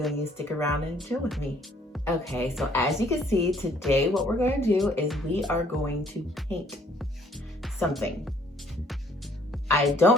and you stick around and chill with me. Okay, so as you can see, today what we're going to do is we are going to paint something. I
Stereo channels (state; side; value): normal; both; correlation 0.62